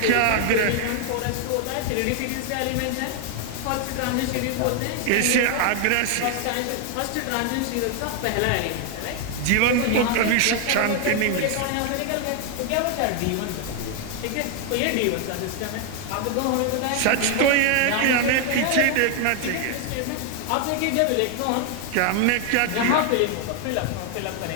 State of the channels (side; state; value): both; different; correlation 0.00